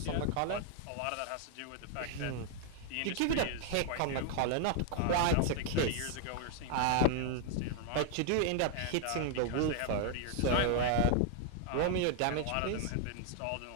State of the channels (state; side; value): different; both; correlation 0.00